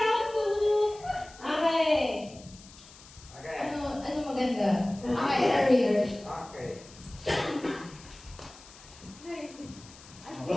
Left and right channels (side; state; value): left; noise; hiss, 21 dB below the sound